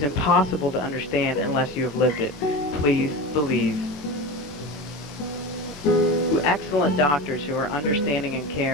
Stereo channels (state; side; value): normal; both; correlation 0.27